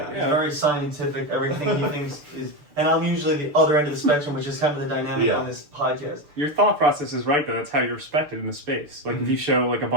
He's very scientific. Everything he thinks is, and I'm usually the other end of the spectrum, which is kind of the dynamic on this podcast. Your thought process is right, though. That's how you're respected in the space. Like, if you show like a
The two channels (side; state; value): left; late; 6.8 ms